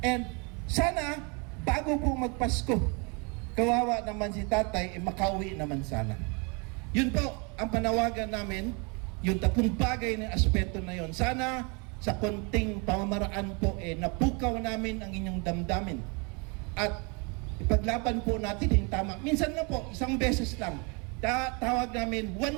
And sana, bago po magpasko, kawawa naman si tatay, makauwi naman sana. Yun po, ang panawagan namin, yung tatlong bagay na aspeto na yun. Sana, sa konting pamamaraan po, napukaw namin ang inyong damdamin. At ipaglaban po natin yung tama. Minsan na po, isang beses lang. Tawag namin,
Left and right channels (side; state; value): left; quieter; 32.0 dB